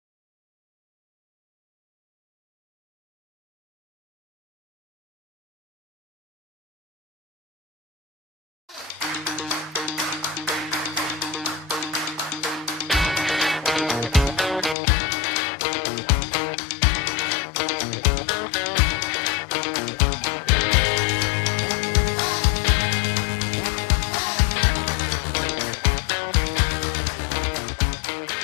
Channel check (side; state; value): right; drops out; at 14.8 s